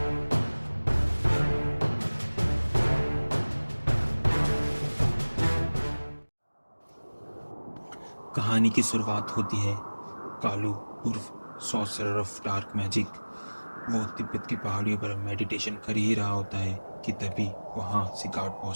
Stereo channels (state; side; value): inverted; both; correlation -1.00